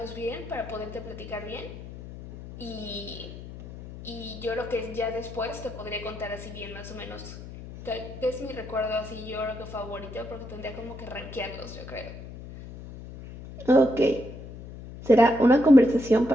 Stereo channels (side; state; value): left; noise; hum, 13 dB below the sound